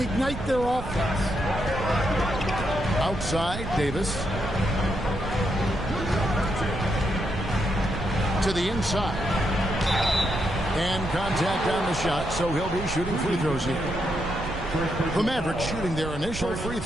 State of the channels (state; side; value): noise; right; rumble, 8 dB below the sound